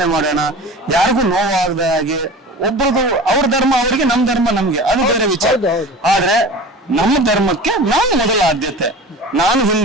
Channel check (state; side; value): normal; both; correlation 0.36